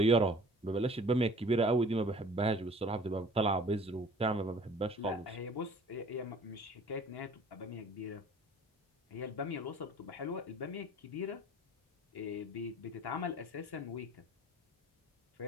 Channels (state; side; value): normal; both; correlation 0.49